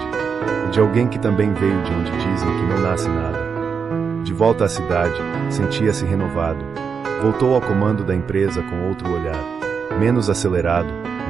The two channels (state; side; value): quieter; left; 6.1 dB